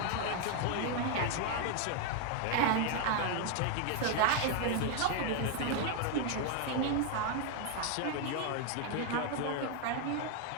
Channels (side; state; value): both; different; correlation 0.00